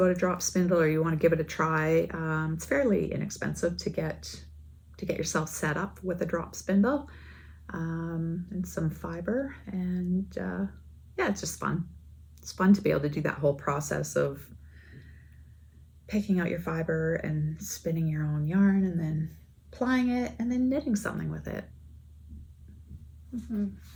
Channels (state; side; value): identical; both; correlation 1.00